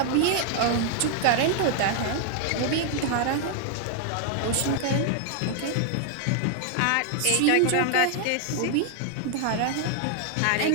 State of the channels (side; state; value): both; different; correlation 0.00